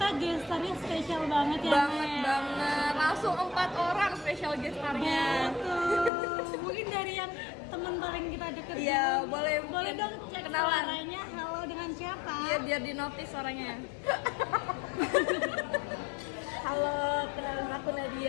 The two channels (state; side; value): drops out; right; at 6.1 s